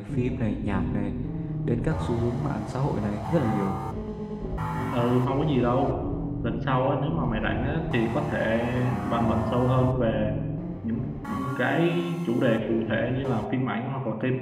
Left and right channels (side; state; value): both; identical; correlation 1.00